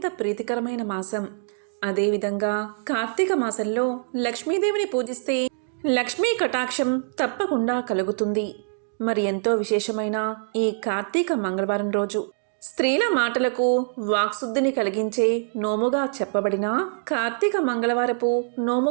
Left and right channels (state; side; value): silent; left; digital silence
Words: ప్రీతికరమైన మాసం. అదేవిధంగా కార్తీక మాసంలో లక్ష్మీదేవిని పూజిస్తే లక్ష్మీ కటాక్షం తప్పకుండా కలుగుతుంది. మరి ఎంతో విశేషమైన ఈ కార్తీక మంగళవారం రోజు స్త్రీల మాటలకు వాక్శుద్ధిని కలిగించే నోముగా చెప్పబడిన కార్తీక మంగళవారపు